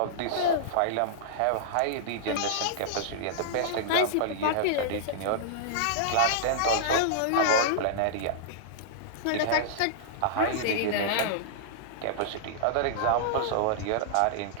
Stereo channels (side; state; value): both; different; correlation -0.02